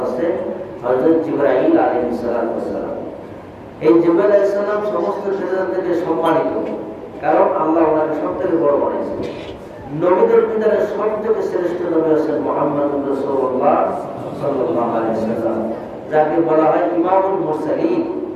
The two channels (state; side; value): identical; both; correlation 1.00